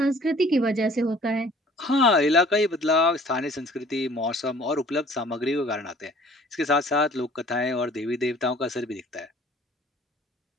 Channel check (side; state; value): both; normal; correlation 0.52